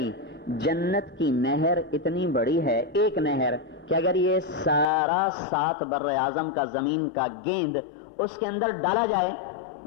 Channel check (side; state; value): right; drops out; at 4.9 s